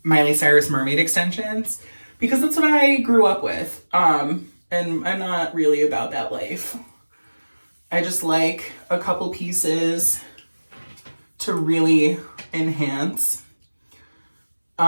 Miley Cyrus mermaid extensions because that's what I grew up with. And I'm not really about that life. I just like a couple pieces to really enhance.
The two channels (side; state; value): both; inverted; correlation -1.00